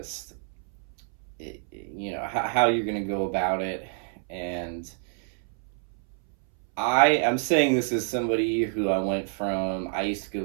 how you're going to go about it. And I'm saying this as somebody who I used to go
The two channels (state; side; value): silent; left; 60 dB below the other